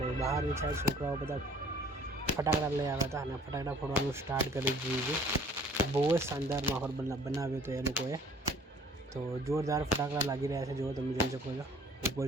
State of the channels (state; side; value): normal; both; correlation 0.54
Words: બહારની સાઈડ છોકરાઓ બધા ફટાકડા લઈ આવ્યા હતા અને ફટાકડા ફોડવાનું સ્ટાર્ટ કરી દીધું છે. બહુ જ શાનદાર માહોલ બનાવ્યો હતો એ લોકોએ. તો જોરદાર ફટાકડા લાગી રહ્યા છે, જો તમે જોઈ શકો છો. ઉપર